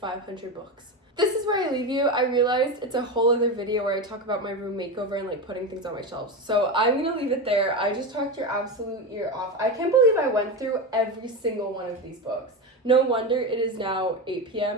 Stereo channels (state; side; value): normal; both; correlation 0.17